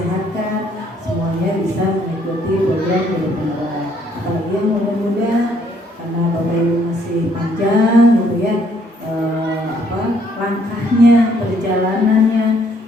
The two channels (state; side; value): normal; both; correlation 0.67